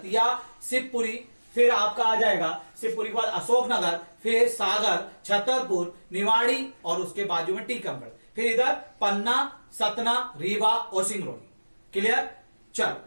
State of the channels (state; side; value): inverted; both; correlation -1.00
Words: शिवपुरी, फिर आपका आ जाएगा शिवपुरी के बाद अशोकनगर, फिर सागर, छतरपुर, निवाड़ी और उसके बाजू में टीकमगढ़, फिर इधर पन्ना, सतना, रीवा और सिंगरौली। क्लियर। चल